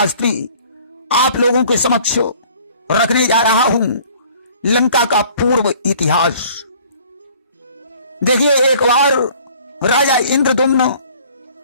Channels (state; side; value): inverted; both; correlation -0.53